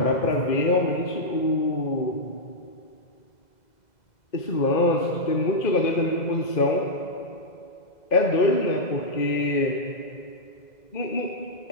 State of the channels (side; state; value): right; late; 2.0 ms